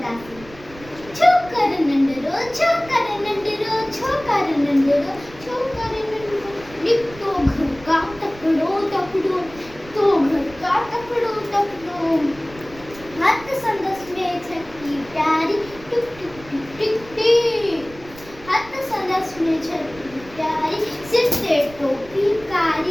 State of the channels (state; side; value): noise; right; rumble, 20 dB below the sound